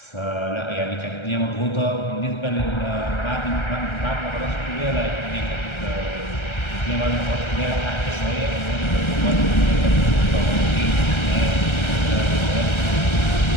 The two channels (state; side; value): late; right; 1.3 ms